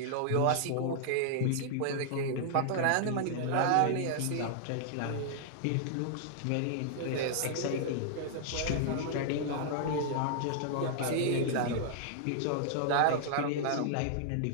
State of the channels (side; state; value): both; different; correlation -0.01